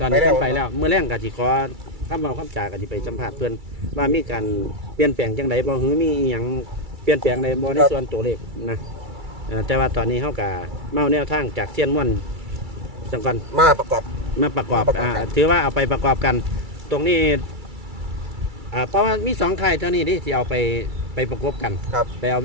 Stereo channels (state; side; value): late; left; 2.3 ms